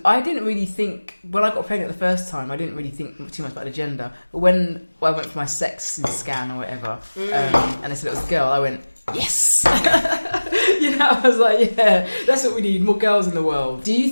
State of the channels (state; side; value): inverted; both; correlation -1.00